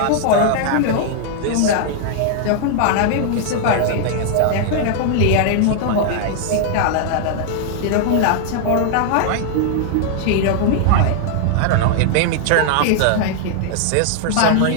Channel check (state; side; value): different; both; correlation -0.01